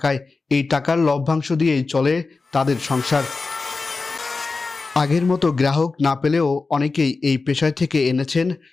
এই টাকার লভ্যাংশ দিয়েই চলে তাদের সংসার। আগের মতো গ্রাহক না পেলেও অনেকেই এই পেশায় থেকে এনেছেন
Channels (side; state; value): right; quieter; 4.0 dB